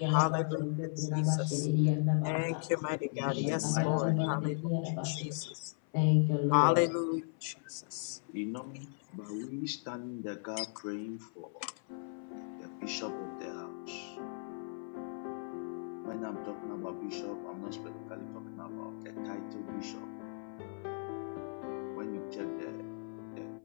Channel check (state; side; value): silent; right; 54 dB below the other